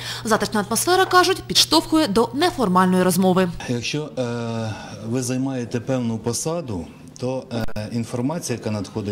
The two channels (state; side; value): identical; both; correlation 1.00